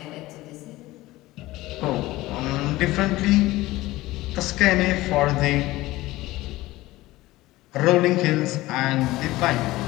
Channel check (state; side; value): quieter; right; 18.1 dB